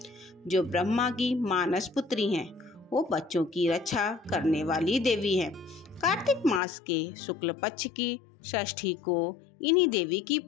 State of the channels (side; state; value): right; drops out; at 6.6 s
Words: जो ब्रह्मा की मानस पुत्री हैं। वो बच्चों की रक्षा करने वाली देवी है। कार्तिक मास के शुक्ल पक्ष की षष्ठी को इन्हीं देवी की